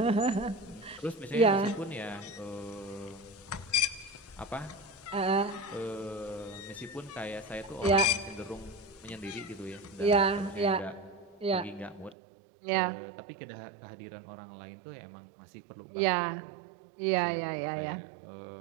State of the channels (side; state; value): left; drops out; at 12.2 s